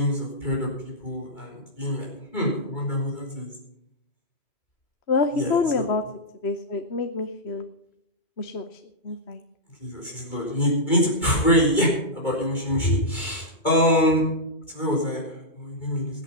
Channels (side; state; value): right; late; 2.2 ms